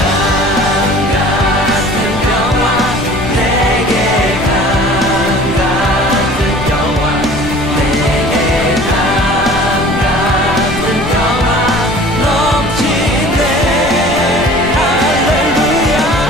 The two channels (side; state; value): left; noise; rumble, 12 dB below the sound